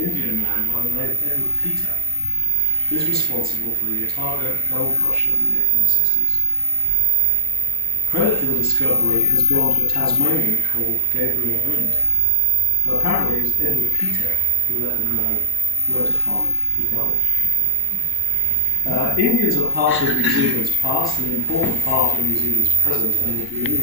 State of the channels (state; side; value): normal; both; correlation -0.10